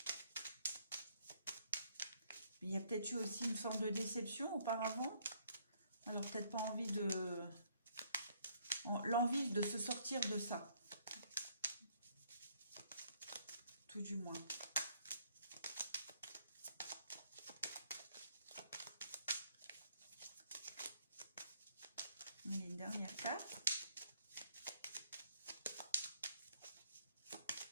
Il y a peut-être eu aussi une forme de déception auparavant. Alors peut-être pas envie de... l'envie de se sortir de ça. Tout du moins. Il y a une dernière carte.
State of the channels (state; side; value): inverted; both; correlation -0.66